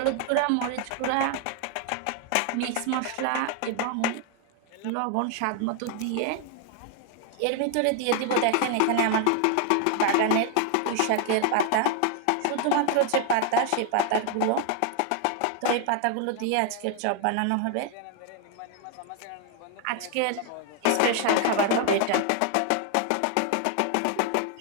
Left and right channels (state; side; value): different; both; correlation 0.00